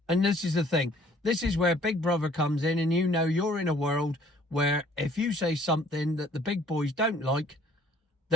And this is the thing. This is where Big Brother comes in, and you know you're in a world where if you say something that the big boys don't like,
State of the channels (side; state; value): both; normal; correlation 0.57